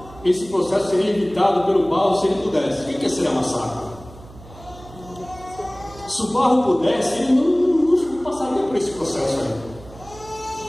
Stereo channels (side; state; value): right; noise; hum, 19 dB below the sound